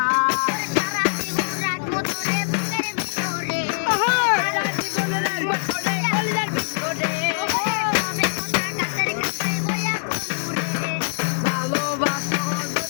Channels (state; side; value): silent; right; digital silence